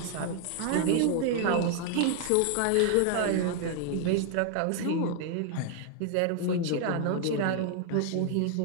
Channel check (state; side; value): different; both; correlation 0.00